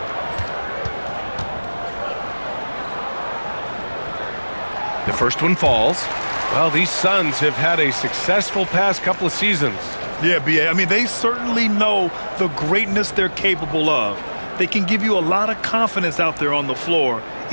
The first one falls. Well, these Suns have had a successful past couple of seasons. Yeah, B.A. I mean, they certainly know the greatness they're capable of. They can give you a lot of confidence out there on the floor,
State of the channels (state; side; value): inverted; both; correlation -1.00